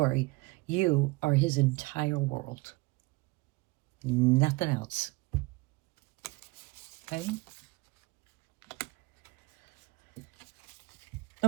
you are his entire world. Nothing else. Okay?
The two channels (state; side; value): quieter; left; 23.4 dB